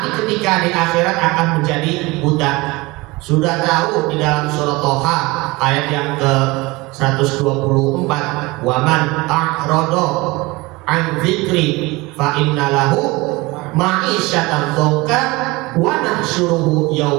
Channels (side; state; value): left; quieter; 22.9 dB